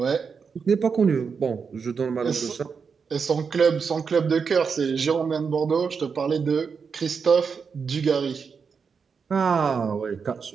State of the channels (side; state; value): left; quieter; 5.8 dB